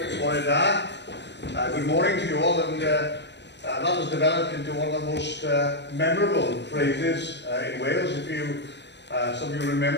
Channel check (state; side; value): late; right; 0.51 ms